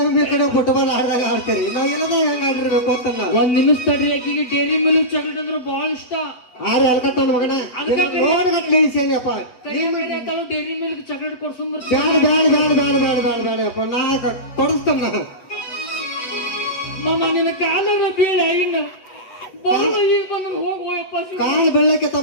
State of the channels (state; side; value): late; right; 8.0 ms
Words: ಒಮ್ಮೆ ಈ ಕಡೆ ಫುಟ್ಬಾಲ್ ಆಡ್ದಾಗ ಆಡ್ತೀರಿ ನಾವ್ ಎಲ್ಲದ ಹೆಂಗ ಆಡಿರ್ಬೇಕು ಅಂತ ನಾವು ಒಂದ್ ನಿಮಿಷ ತಡ್ರಿ ಆಕಿಗೆ ಡೈರಿ ಮಿಲ್ಕ್ ಚಾಕ್ಲೇಟ್ ಅಂದ್ರೆ ಬಹಳ ಇಷ್ಟ ಆರೆ ಹಲ್ಕಟ್ ನನ್ನ ಮಗನ ನೋಡ್ಗಟ್ಲೆ ಇಳಿಸೇನಿಯಪ್ಪ ಡೈರಿ ಮಿಲ್ಕ್ ಚಾಕ್ಲೇಟ್ ಕೊಡ್ಸಂಬರ್ ಬೇಡಪ್ಪ ನಾ ಕೊಡಿಸ್ತೇನೆ ನಾ ಮಾಮ ನಿನ್ನ ಕಾಲರ ಬೀಳ ಹಿಂಗ ಬರೋದು ಈಗ ಬಂದ್ರೆ ಹೋಗಪ್ಪ ಕಾಲ್ ಬೆಳ್ಳಕ್ಕೆ